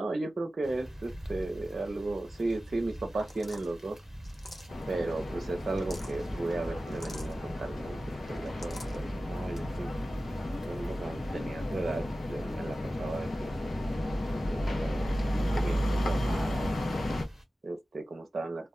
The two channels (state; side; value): normal; both; correlation 0.95